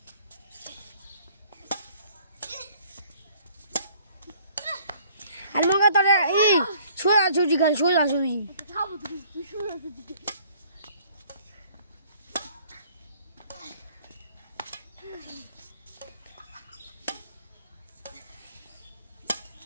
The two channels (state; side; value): inverted; both; correlation -0.58